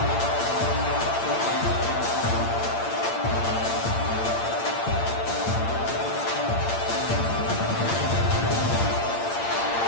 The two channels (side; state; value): right; late; 8.8 ms